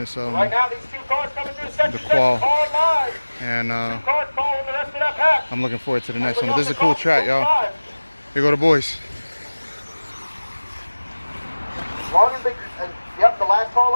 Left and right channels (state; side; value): inverted; both; correlation -1.00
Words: the qual, and I'm looking forward to the next one. But this is a cool track, y'all. Here go the boys. Yep, the last call